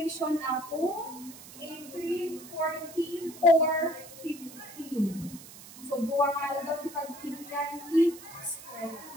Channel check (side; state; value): right; noise; hiss, 16 dB below the sound